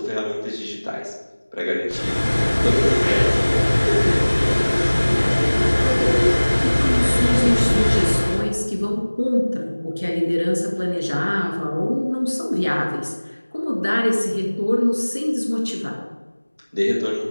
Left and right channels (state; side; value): inverted; both; correlation -1.00